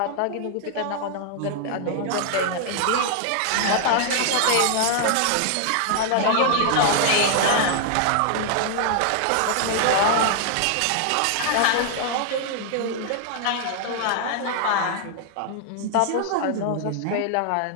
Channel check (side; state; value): both; different; correlation 0.00